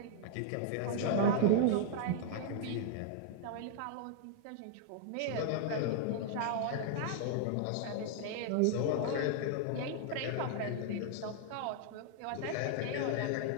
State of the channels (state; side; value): different; both; correlation 0.00